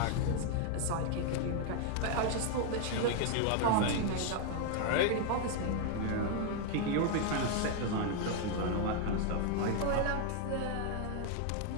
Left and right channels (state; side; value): different; both; correlation 0.00